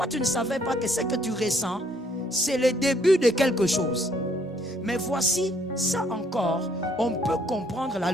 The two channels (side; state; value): both; normal; correlation 0.66